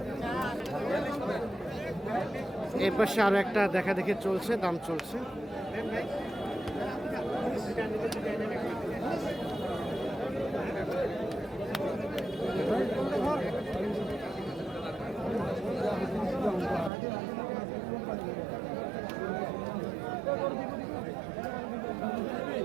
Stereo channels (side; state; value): left; drops out; at 16.9 s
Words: এর পাশে আরো একটা দেখা দেখে চলছে, দাম চলছে।